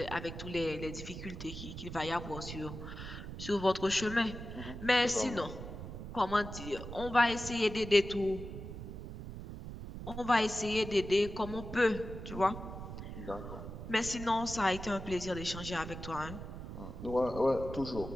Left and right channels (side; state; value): right; noise; rumble, 9 dB below the sound